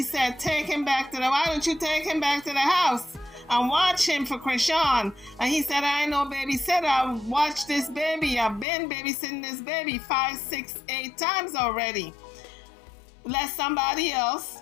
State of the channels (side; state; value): right; drops out; at 8.7 s